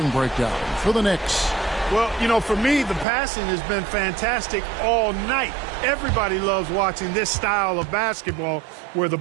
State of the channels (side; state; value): left; drops out; at 3.1 s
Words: breakdown for the Knicks. Well, you know, for me, the passing has been fantastic all night. Everybody loves watching this style of basketball where the